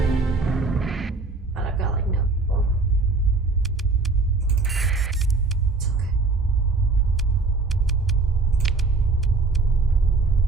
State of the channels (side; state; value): left; quieter; 3.7 dB